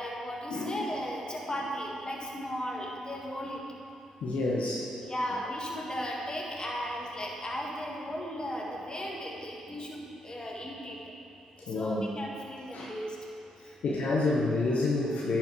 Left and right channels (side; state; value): both; normal; correlation 0.78